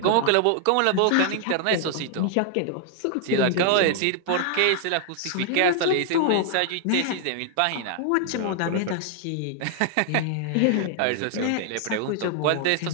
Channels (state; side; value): different; both; correlation 0.00